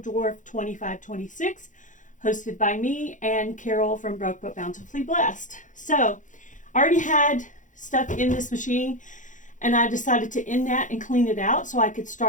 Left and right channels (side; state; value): right; late; 0.37 ms